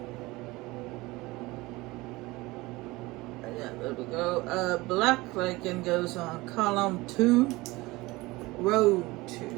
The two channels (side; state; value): left; quieter; 21.2 dB